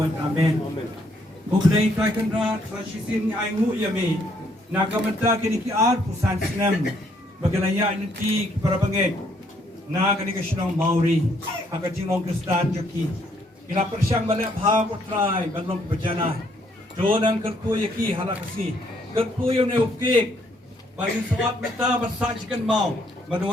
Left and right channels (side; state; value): both; normal; correlation 0.69